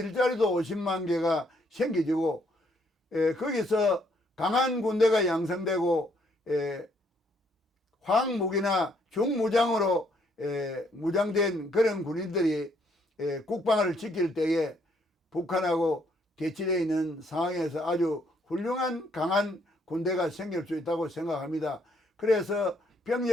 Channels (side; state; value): both; normal; correlation 0.70